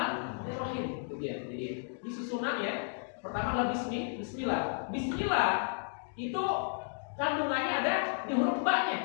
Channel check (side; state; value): right; silent; digital silence